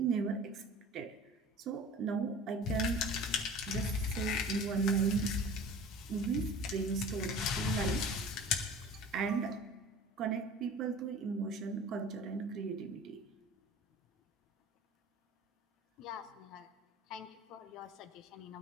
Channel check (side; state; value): both; normal; correlation 0.41